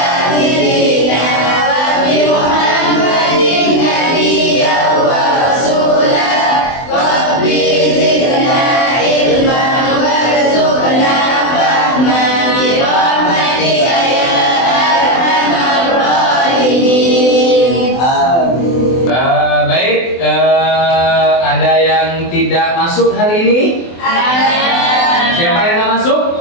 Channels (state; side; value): late; right; 24 ms